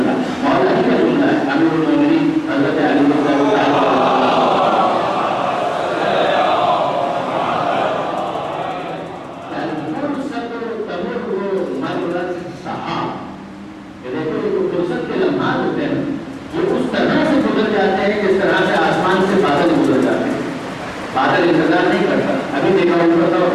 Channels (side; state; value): both; identical; correlation 1.00